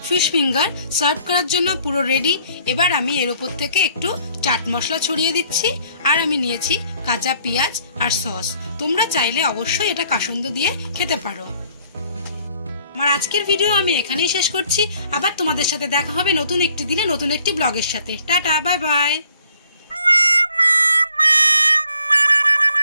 ফিশ ফিঙ্গার সার্ভ করার জন্য পুরো রেডি। এবার আমি এর উপর থেকে একটু চাট মশলা ছড়িয়ে দিচ্ছি, আর আমি নিয়েছি কাঁচা পেঁয়াজ আর সস। তোমরা চাইলে অবশ্যই এটা কাসুন্দ দিয়ে খেতে পারো। আমার আজকের ভিডিও আমি এখানেই শেষ করছি। আবার তোমাদের সাথে দেখা হবে নতুন একটি দিনে নতুন একটি ব্লগের সাথে। Tata, bye bye.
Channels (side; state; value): both; inverted; correlation -0.61